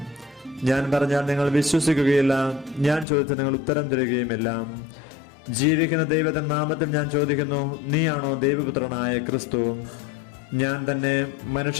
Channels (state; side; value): drops out; right; at 3.1 s